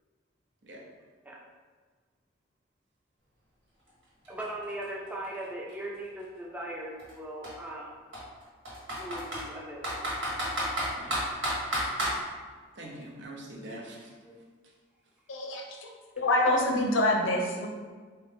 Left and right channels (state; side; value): normal; both; correlation 0.05